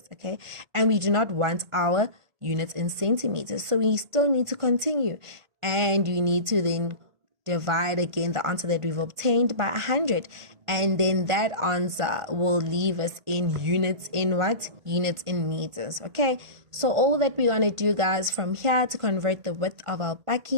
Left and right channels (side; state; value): left; late; 1.5 ms